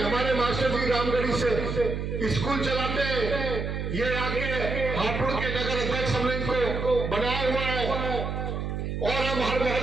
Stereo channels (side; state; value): right; noise; hum, 3 dB below the sound